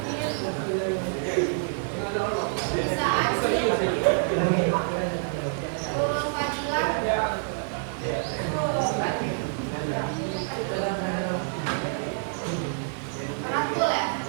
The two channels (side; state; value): left; silent; digital silence